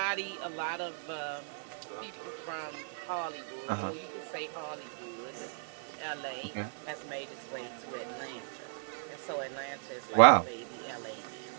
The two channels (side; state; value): left; silent; 54 dB below the other